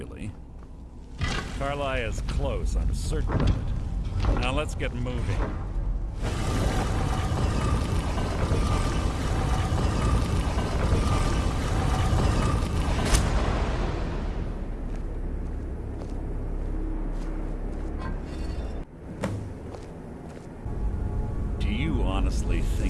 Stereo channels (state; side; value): identical; both; correlation 1.00